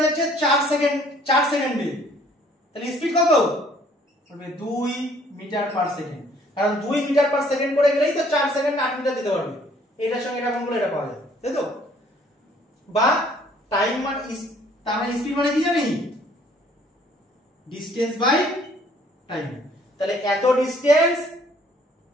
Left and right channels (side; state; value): both; normal; correlation 0.60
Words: যাচ্ছে 4 সেকেন্ডে, তাহলে স্পিড কত? বলবে 2 মিটার পার সেকেন্ড, কারণ 2 মিটার পার সেকেন্ড করে গেলেই তো 4 সেকেন্ড 8 মিটার দিতে পারবে। এটার সঙ্গে এটা গুণ করলে এটা পাওয়া যায়, তাই তো? বা টাইম মানে তার মানে স্পিড মানে কি জানি? Distance by time. তাহলে এত ডিসটেন্স